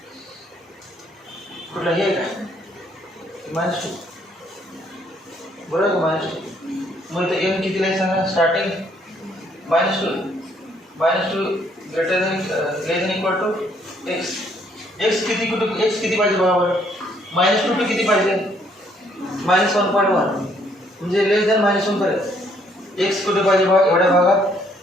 कुठलं हे आहे का -2 बरोबर का -2. मग इथं m कितीला आहे सांगा, starting -2 greater than equal to x. x किती कुठे, x किती पाहिजे बघा बरं, -2 टू किती पाहिजे, -1.1 म्हणजे लेस दॅन -1 पर्यंत x कुठे पाहिजे बघा, एवढ्या भागात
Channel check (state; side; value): normal; both; correlation 0.67